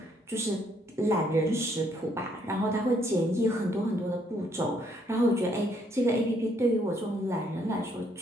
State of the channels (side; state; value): both; normal; correlation 0.69